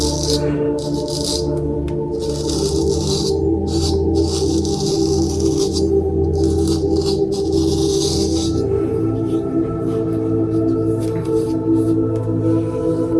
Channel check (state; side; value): identical; both; correlation 1.00